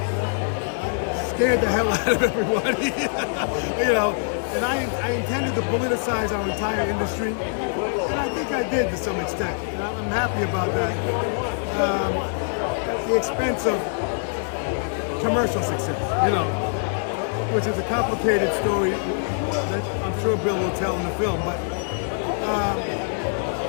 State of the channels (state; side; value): silent; right; digital silence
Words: scared the hell out of everybody. You know, and I intended to politicize our entire industry, and I think I did to some extent. And I'm happy about that. At the expense of commercial success, you know, which is a complicated story that I'm sure Bill will tell in the film. But